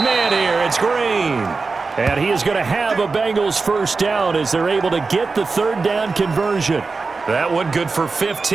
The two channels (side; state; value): left; quieter; 4.2 dB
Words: here. It's Green. And he is going to have a Bengals 1st down as they're able to get the 3rd down conversion. That one good for